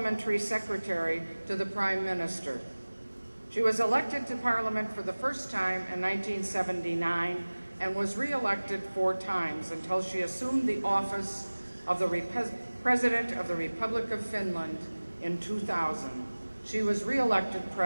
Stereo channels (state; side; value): inverted; both; correlation -1.00